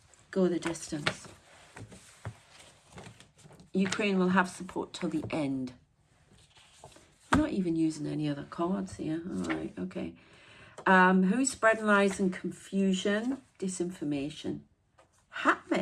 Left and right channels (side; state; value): both; identical; correlation 1.00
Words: Go the distance. Ukraine will have support till the end. I'm not even using any other cards here. All right, okay. Who's spreading lies and confusion? Disinformation.